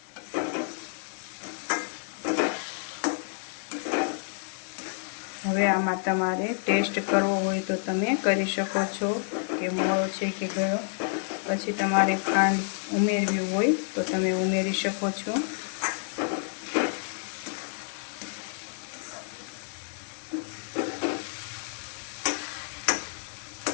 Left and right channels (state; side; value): silent; right; 59 dB below the other